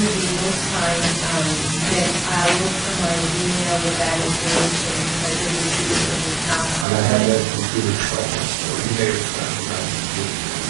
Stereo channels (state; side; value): drops out; left; at 6.9 s